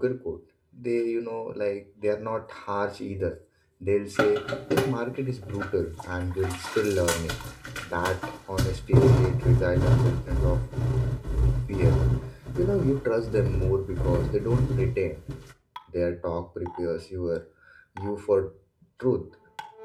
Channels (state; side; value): identical; both; correlation 1.00